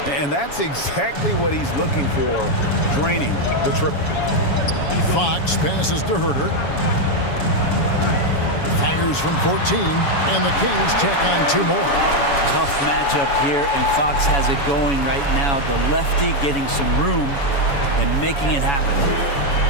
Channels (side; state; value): right; late; 7.1 ms